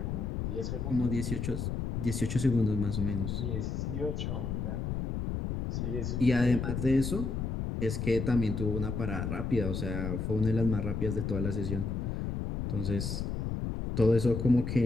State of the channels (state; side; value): noise; left; rumble, 2 dB below the sound